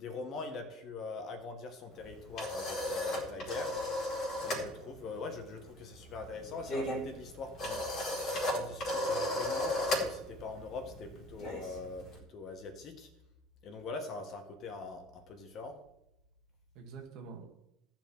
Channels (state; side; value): normal; both; correlation 0.49